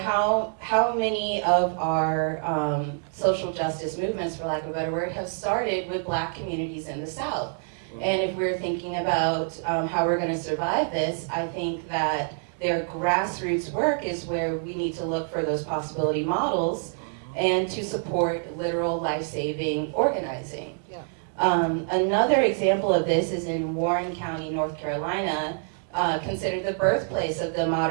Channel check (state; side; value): silent; left; 61 dB below the other